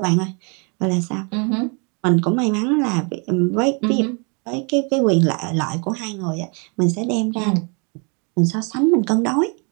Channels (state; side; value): quieter; left; 34.6 dB